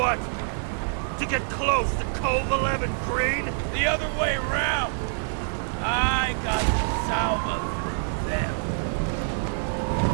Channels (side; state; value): left; silent; digital silence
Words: To get close to Cove 11 Green? The other way around! I got to Salma through them.